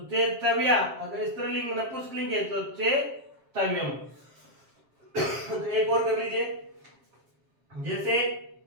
चे तव्या, अगर स्त्रीलिंग नपुंसकलिंग है तो चे तव्यम। तो एक और कर लीजिए, जैसे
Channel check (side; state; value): left; late; 7.4 ms